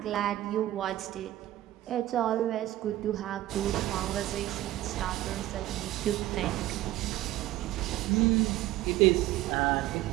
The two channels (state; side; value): quieter; left; 15.2 dB